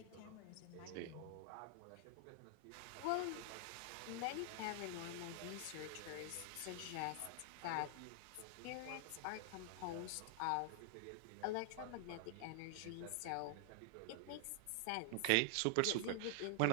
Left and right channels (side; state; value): both; different; correlation -0.01